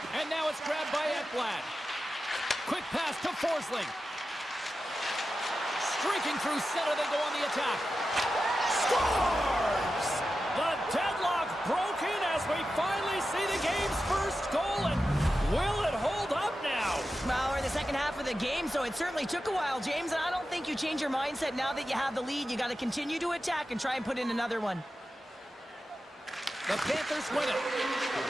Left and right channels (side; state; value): both; normal; correlation 0.92